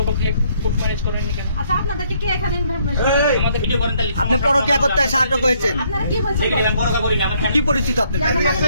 কোর্ট ম্যারেজ করেন কেন? আচ্ছা, আপনাদেরকে কে এখানে আমাদের ভিডিও করেন তাহলে আপনি পরকীয়া করতে আটক হয়েছেন, আপনারা কি বলছেন? আমি পরোয়া করি না, আমার কি পরিচিত আপনার?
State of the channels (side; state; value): both; inverted; correlation -0.68